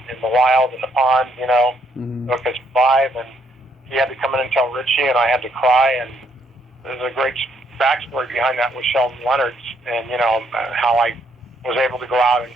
the wild, in the pond, you know, so it could survive. And he had to come in and tell Ritchie, and I had to cry. And there's a great backstory behind that with Sheldon Leonard's, and, you know, how I was able to go out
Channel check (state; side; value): normal; both; correlation 0.71